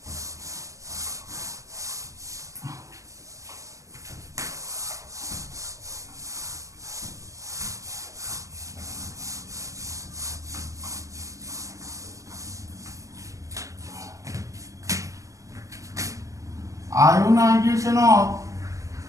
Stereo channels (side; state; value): left; late; 0.16 ms